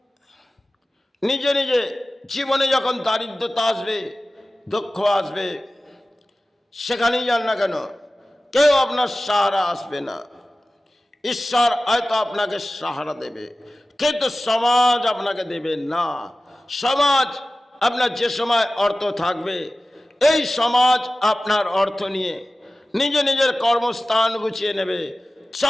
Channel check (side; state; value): both; normal; correlation 0.96